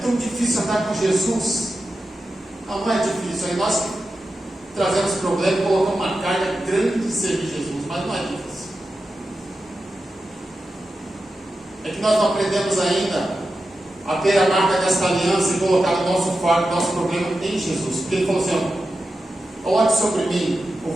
difícil andar com Jesus. Não é difícil. Aí nós trazemos problema e colocamos uma carga grande de servir Jesus. Mas não é difícil. É que nós não aprendemos ainda a ter a marca dessa aliança e colocar o nosso fardo, o nosso problema em Jesus. Porque ele falou assim: coloque sobre mim o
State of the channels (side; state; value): both; normal; correlation 0.91